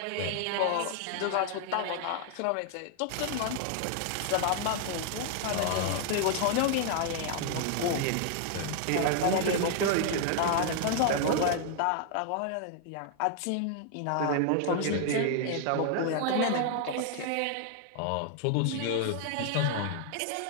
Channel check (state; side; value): different; both; correlation 0.00